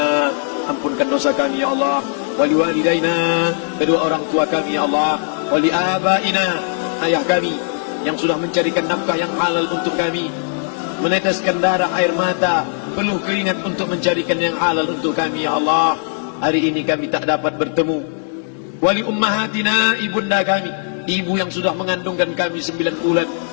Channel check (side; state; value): right; silent; digital silence